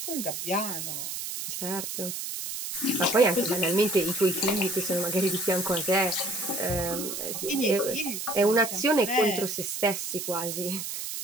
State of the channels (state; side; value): noise; right; hiss, 5 dB below the sound